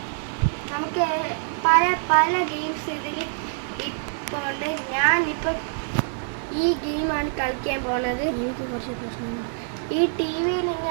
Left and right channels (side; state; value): left; silent; 55 dB below the other